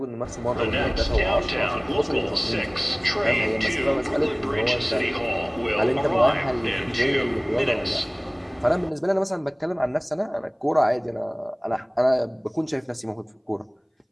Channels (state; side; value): identical; both; correlation 1.00